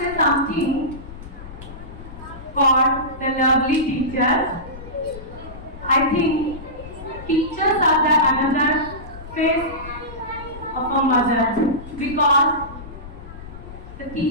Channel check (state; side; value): noise; left; rumble, 14 dB below the sound